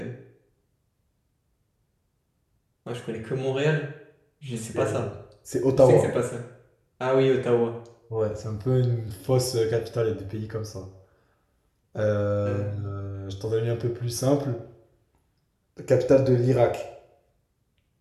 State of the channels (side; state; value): both; identical; correlation 1.00